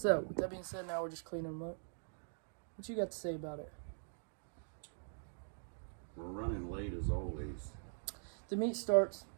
with that being said, now we're just cleaning them up. What you got to say about it? We're running late as always. The meet starts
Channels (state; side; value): silent; left; digital silence